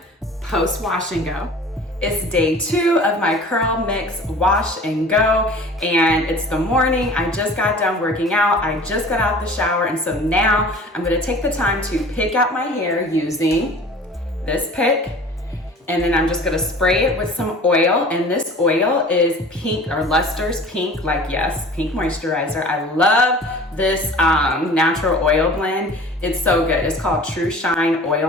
post wash and go. It's day 2 of my curl mix wash and go, and it's the morning. I just got done working out. I just got out the shower, and so now I'm gonna take the time to pick out my hair using this pick, and then I'm just gonna spray it with some oil, and this oil is pink, or Luster's pink, like yes, pink moisturizer. I love this natural oil blend. It's so good. It's called True Shine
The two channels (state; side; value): normal; both; correlation 0.43